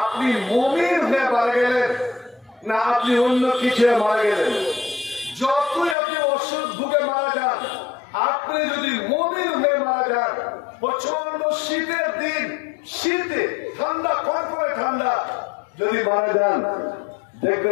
আপনি মুমিন হয়ে মারা গেলেন না আপনি অন্য কিছু মারা গেলেন, যতই আপনি অসুখ ভুগে মারা যান, আপনি যদি মুমিন হয়ে মারা যান, প্রচন্ড শীতের দিন, শীতে ঠান্ডা, কনকনে ঠান্ডা যদি মারা যান,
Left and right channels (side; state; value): right; drops out; at 6.0 s